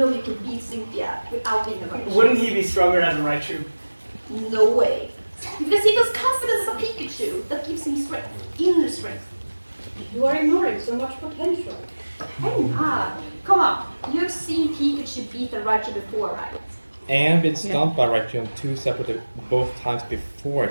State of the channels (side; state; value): both; inverted; correlation -1.00